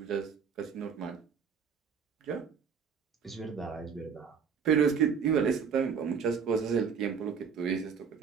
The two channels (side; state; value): left; quieter; 6.5 dB